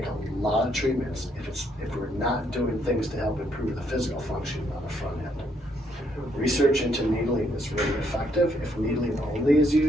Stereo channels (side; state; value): both; normal; correlation 0.72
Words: a lot of treatments if we're not doing things to help improve the physical function on the front end. Research into needling is really effective. If needling only is